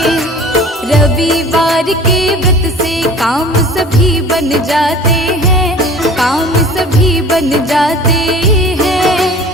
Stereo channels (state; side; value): normal; both; correlation 0.44